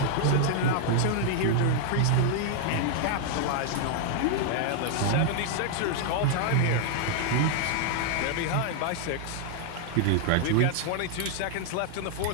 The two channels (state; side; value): different; both; correlation 0.00